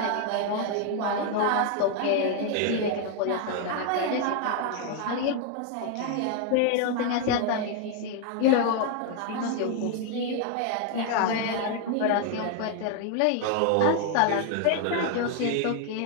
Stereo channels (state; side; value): different; both; correlation 0.00